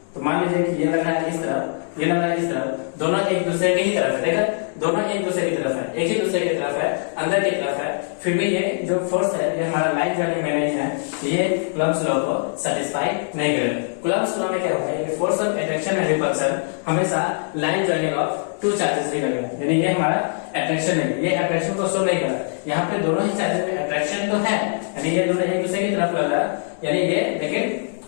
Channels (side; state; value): right; silent; digital silence